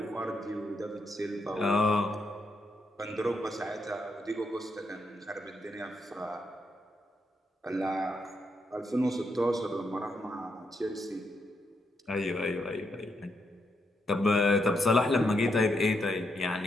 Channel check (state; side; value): normal; both; correlation 0.80